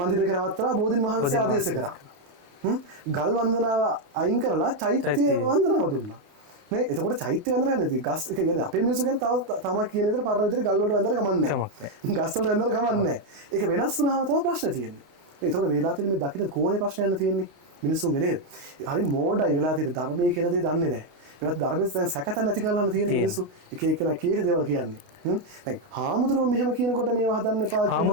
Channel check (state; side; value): late; left; 28 ms